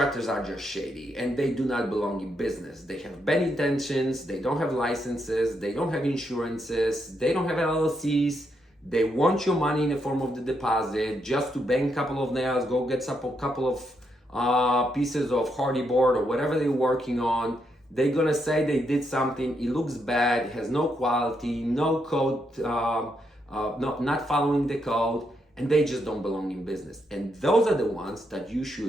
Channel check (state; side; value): normal; both; correlation 0.79